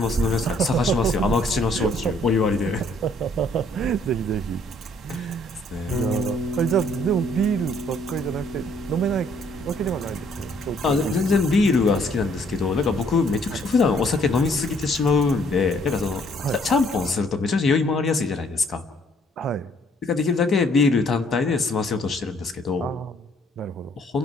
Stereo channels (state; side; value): normal; both; correlation 0.64